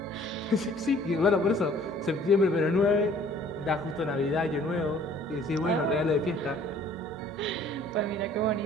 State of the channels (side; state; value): both; normal; correlation 0.55